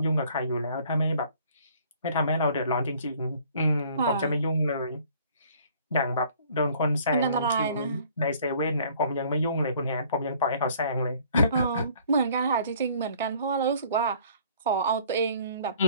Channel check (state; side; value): inverted; both; correlation -0.56